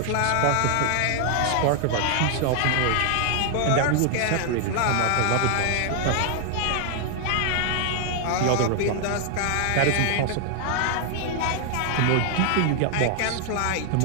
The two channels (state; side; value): different; both; correlation 0.00